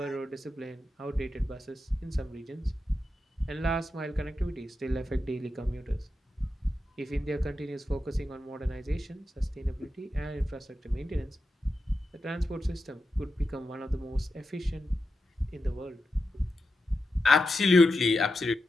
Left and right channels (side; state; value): both; normal; correlation 0.89